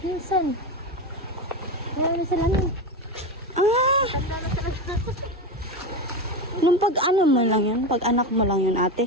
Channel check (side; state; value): both; normal; correlation 0.18